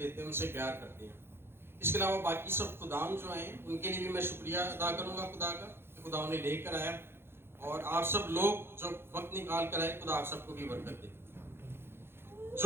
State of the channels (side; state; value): left; late; 0.11 ms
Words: ہیں, ان سے پیار کرتے ہیں. اس کے علاوہ باقی سب خدام جو ہیں ان کے لیے بھی میں شکریہ ادا کروں گا خدا کا کہ خدا انہیں لے کر آیا, اور آپ سب لوگ جو وقت نکال کر آئے, خدا آپ سب کو بھی برکت دے.